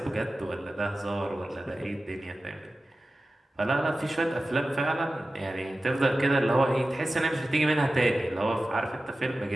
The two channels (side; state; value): both; normal; correlation 0.95